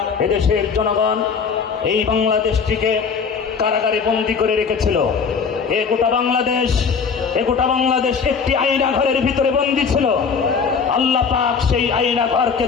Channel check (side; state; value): right; quieter; 5.8 dB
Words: এদেশের জনগণ এই বাংলাদেশটিকে কারাগারে বন্দী করে রেখেছিল। এ গোটা বাংলাদেশ একটি আয়না ঘরের ভিতরে বন্দী ছিল। আল্লাহ পাক সেই আয়না ঘরকে